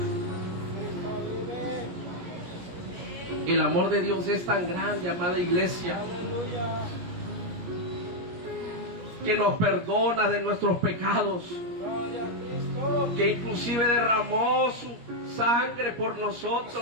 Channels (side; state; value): left; late; 17 ms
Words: El amor de Dios es tan grande, amada iglesia, que nos perdona de nuestros pecados, que inclusive derramó su sangre por